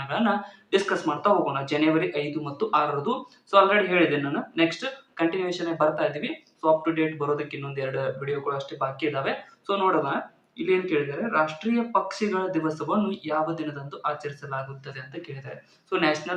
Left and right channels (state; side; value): identical; both; correlation 1.00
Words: ಡಿಸ್ಕಸ್ ಮಾಡ್ತಾ ಹೋಗೋಣ. ಜನವರಿ 5 ಮತ್ತು 6ರದು ಆಲ್ರೆಡಿ ಹೇಳಿದೆ ನಾನು. ನೆಕ್ಸ್ಟ್ ಕಂಟಿನ್ಯೂಷನ್ ಬರ್ತಾ ಇದೀವಿ. ಅಪ್ ಟು ಡೇಟ್ ಬರೋದಕ್ಕೆ ಇನ್ನೊಂದು 2 ವಿಡಿಯೋಗಳು ಅಷ್ಟೇ ಬಾಕಿ ಇದಾವೆ. ನೋಡೋಣ. ಇಲ್ಲಿ ಏನ್ ಕೇಳಿದ್ದಾರೆ, ರಾಷ್ಟ್ರೀಯ ಪಕ್ಷಿಗಳ ದಿವಸವನ್ನು ಯಾವ ದಿನದಂದು ಆಚರಿಸಲಾಗುತ್ತದೆ ಅಂತ ಕೇಳಿದ್ದಾರೆ.